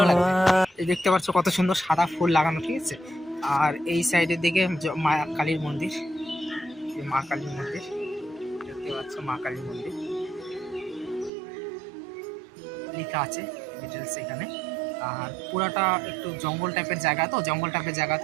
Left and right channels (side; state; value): left; drops out; at 11.3 s